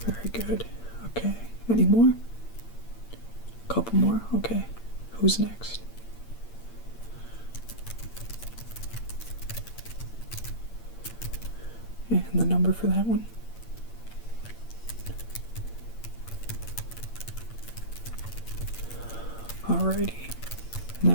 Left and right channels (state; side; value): late; right; 8.8 ms